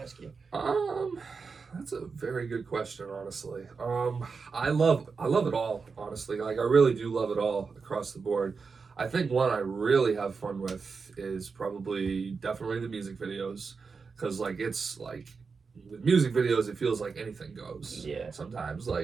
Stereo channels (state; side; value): quieter; left; 5.0 dB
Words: you. That's a very good question, honestly. I love it all, honestly. Like I really do love it all across the board. I think one I really have fun with is definitely the music videos, because like it's like with music videos it feels like anything goes. Yeah. Sometimes